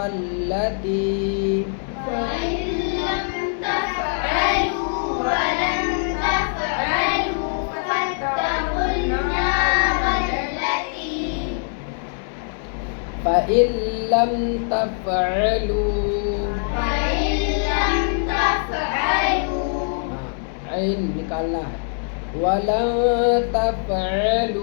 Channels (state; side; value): silent; right; digital silence